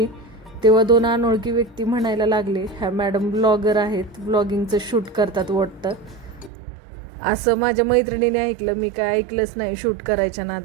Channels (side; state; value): left; drops out; at 6.5 s